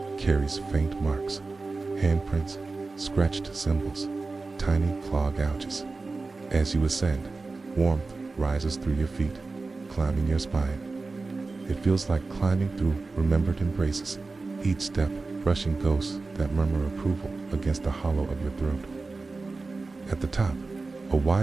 carries faint marks, handprints, scratched symbols, tiny claw gouges. As you ascend, warmth rises through your feet, climbing your spine. It feels like climbing through remembered embraces, each step brushing ghosts that murmur approval against the hollow of your throat. At the top, a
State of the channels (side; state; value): left; quieter; 3.8 dB